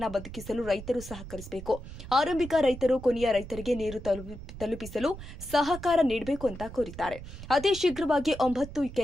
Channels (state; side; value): noise; right; rumble, 12 dB below the sound